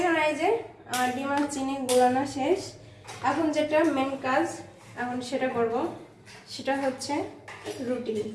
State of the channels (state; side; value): identical; both; correlation 1.00